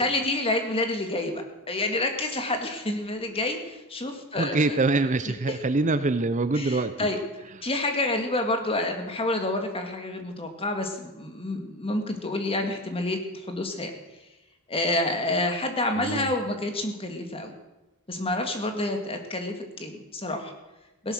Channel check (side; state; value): both; normal; correlation 0.28